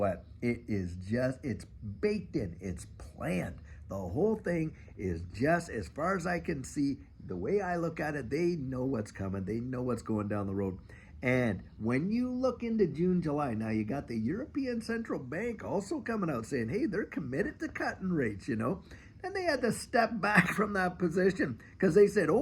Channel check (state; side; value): identical; both; correlation 1.00